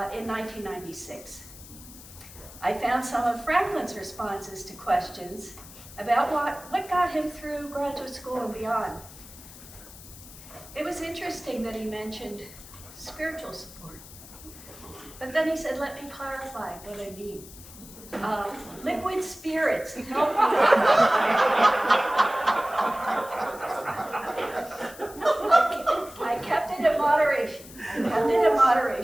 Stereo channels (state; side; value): noise; left; hiss, 17 dB below the sound